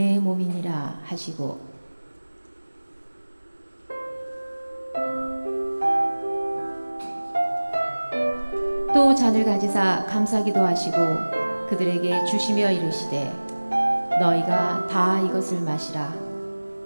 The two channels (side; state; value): both; inverted; correlation -1.00